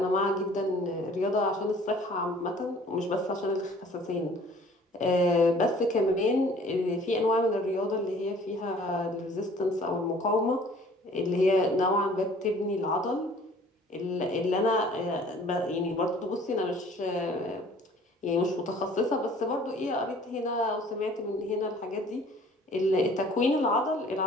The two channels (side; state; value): both; normal; correlation 0.52